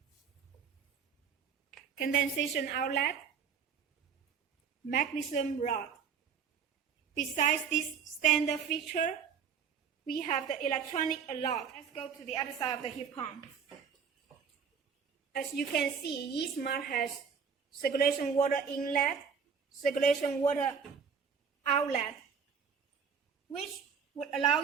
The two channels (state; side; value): quieter; left; 6.5 dB